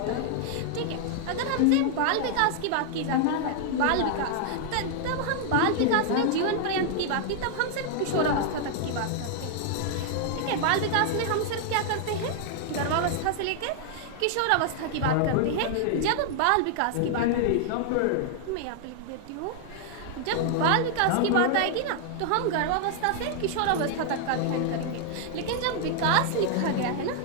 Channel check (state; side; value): different; both; correlation 0.00